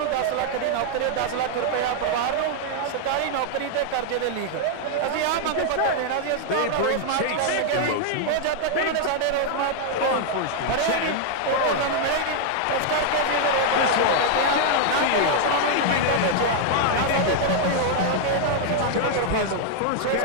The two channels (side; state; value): both; different; correlation -0.01